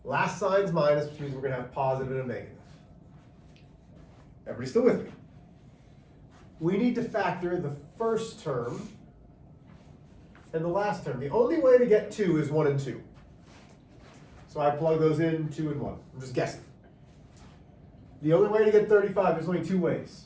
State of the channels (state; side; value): identical; both; correlation 1.00